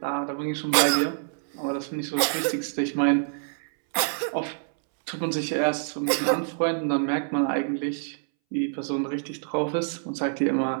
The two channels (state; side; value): silent; left; 61 dB below the other